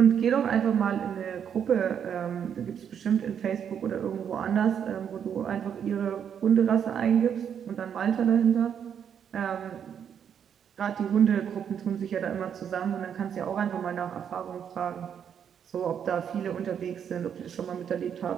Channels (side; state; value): left; quieter; 8.2 dB